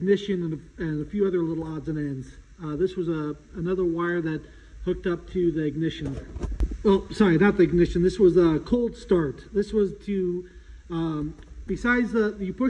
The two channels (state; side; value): identical; both; correlation 1.00